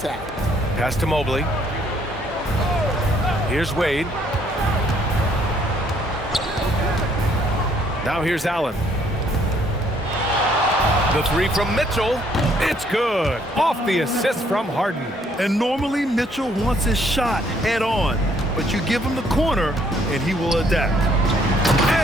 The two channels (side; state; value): both; normal; correlation 0.66